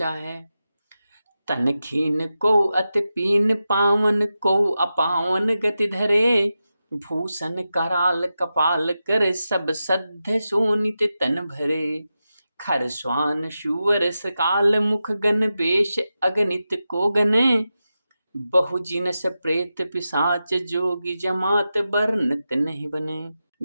है। तन खीन को अति पीन पावन को अपावन गति धरे, भूषण कराल कपाल कर सब सद्ध शोणित तन भरे। खर स्वान शूवर सकाल मुख गण बेश अगणित को गने, बहु जिनस प्रेत पिशाच जोगी जमात बरनत नहीं बने।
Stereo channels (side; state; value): both; inverted; correlation -0.91